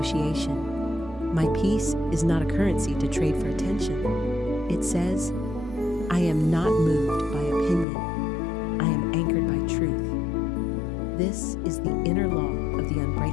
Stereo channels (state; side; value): drops out; right; at 7.9 s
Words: My peace is not a currency to trade for attention. It says, I am not moved by opinion. I am anchored by truth. This is the inner law of the